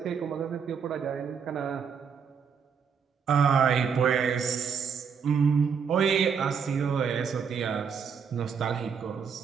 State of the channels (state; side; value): quieter; left; 6.6 dB